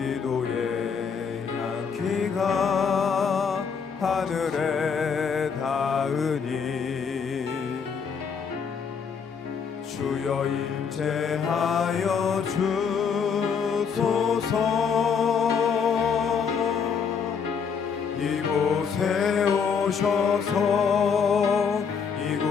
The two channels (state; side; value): quieter; right; 6.3 dB